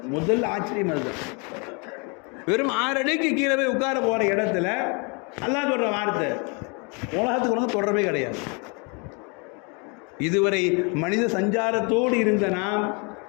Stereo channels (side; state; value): right; quieter; 33.0 dB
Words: முதல் ஆச்சரியம் அதுதான். வெறும் 6 அடிக்கு கீழே போய் உட்கார போகிற இடத்துல அல்லாஹ் சொல்கிற வார்த்தை, உலகத்துக்கு உனக்கு தொடர்பே கிடையாது. இதுவரை மனித சஞ்சாரத்தோடு இருந்த நாம்